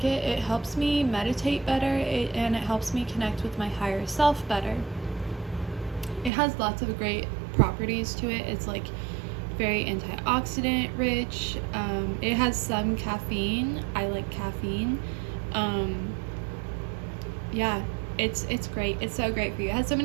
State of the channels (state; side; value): drops out; left; at 6.3 s